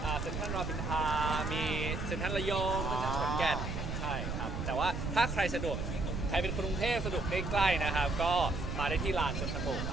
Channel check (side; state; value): right; noise; rumble, 4 dB below the sound